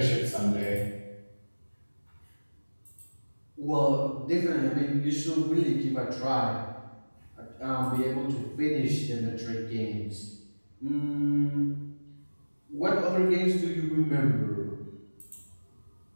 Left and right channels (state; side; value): inverted; both; correlation -1.00